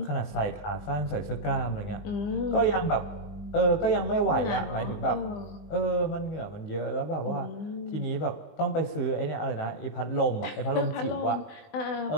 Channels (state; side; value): late; right; 20 ms